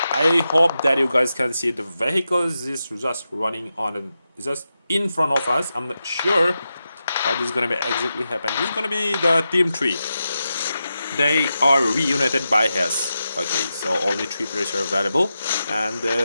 I hope that you guys can see the vehicles is just running on just in front of us. I'm not sure what is gonna be exactly happen. This is gonna be the Team 3. They are reunited by Hess. Okay, so only 3 players are available, and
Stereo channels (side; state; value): both; inverted; correlation -0.90